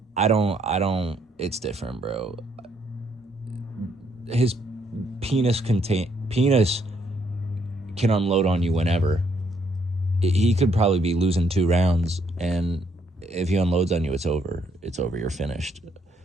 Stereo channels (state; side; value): normal; both; correlation 0.71